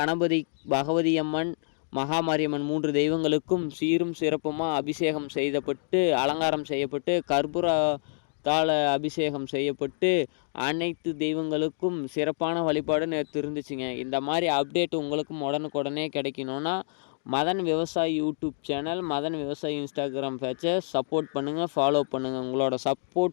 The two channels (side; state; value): right; silent; digital silence